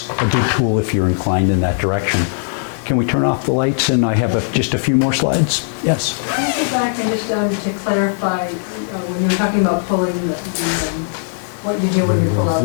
a good tool if you're inclined in that direction. Can we turn off the lights? And I have just a few more slides. Yes? Can I go back and just to clarify, when you were talking about pulling what you do when you pull out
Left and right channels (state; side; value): silent; right; digital silence